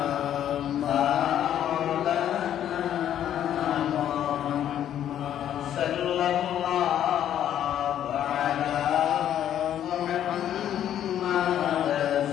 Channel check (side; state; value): right; quieter; 10.6 dB